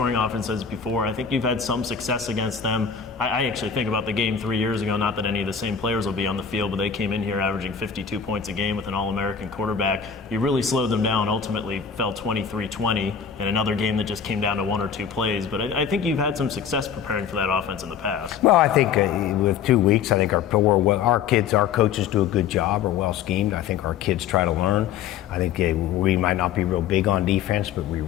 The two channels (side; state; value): right; quieter; 7.4 dB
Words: offenses before. I think you've had some success against them. I actually think about the game 3 years ago, not that any of the same players will be on the field, but they came in here averaging 52 points a game with an All-American quarterback. You really slowed them down, ultimately fell 23-20 in another game that just came down to 1 or 2 plays. But I think you've had some success preparing for that offense in the past. Well, I think with 2 weeks, I think our kids, our coaches do a good job, are well schemed. I think our kids try to learn. I think we might not be real big on defense, but we